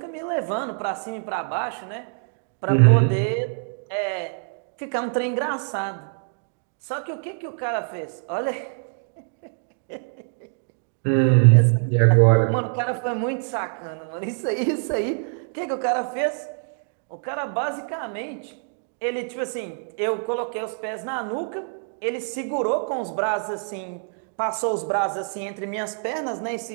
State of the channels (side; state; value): left; silent; digital silence